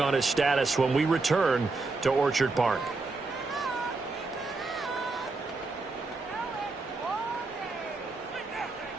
his status when we return to Orchard Park.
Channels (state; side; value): quieter; left; 3.6 dB